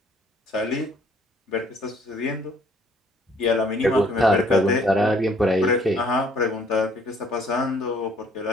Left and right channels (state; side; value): normal; both; correlation 0.61